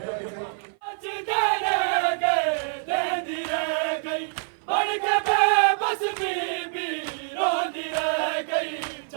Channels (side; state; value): left; silent; 56 dB below the other